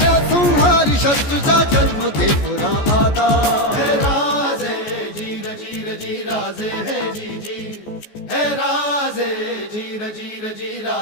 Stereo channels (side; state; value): right; late; 14 ms